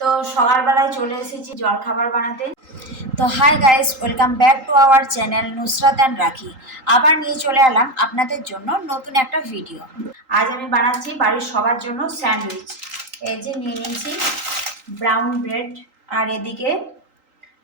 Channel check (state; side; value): late; left; 3.8 ms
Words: তো সকালবেলায় চলে এসেছি জলখাবার বানাতে। তো hi guys, welcome back to our channel Nusrat and রাখি। আবার নিয়ে চলে এলাম আপনাদের জন্য নতুন একটা ভিডিও। আজ আমি বানাচ্ছি বাড়ির সবার জন্য স্যান্ডউইচ। এই যে নিয়ে নিয়েছি ব্রাউন ব্রেড, আর এদিকে